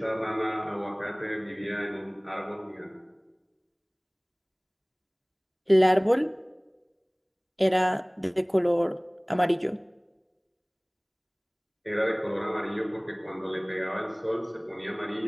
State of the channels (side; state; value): both; identical; correlation 1.00